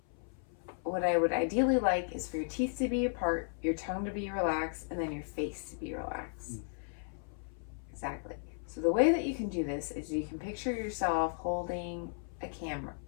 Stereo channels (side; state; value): right; silent; 54 dB below the other